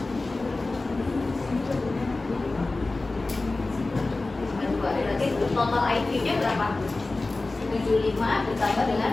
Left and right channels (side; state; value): right; quieter; 3.3 dB